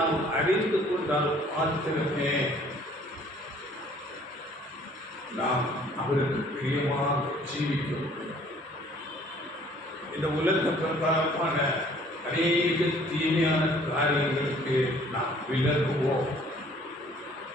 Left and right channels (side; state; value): both; normal; correlation 0.56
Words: அறிந்து கொண்டால் மாத்திரமே நாம் அவருக்கு பிரியமாக ஜீவிக்க முடியும். இந்த உலக பிரகாரமான அநேக தீமையான காரியங்களுக்கு நாம் விலகுவோம்.